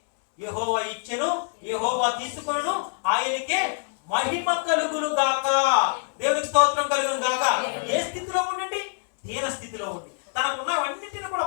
యెహోవా ఇచ్చెను, యెహోవా తీసుకొనును, ఆయనకే మహిమ కలుగును గాక. దేవునికి స్తోత్రం కలుగును గాక. ఏ స్థితిలో ఉండండి? దీన స్థితిలో ఉండి, తనకున్నవన్నింటిని కూడా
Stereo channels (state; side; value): silent; right; 61 dB below the other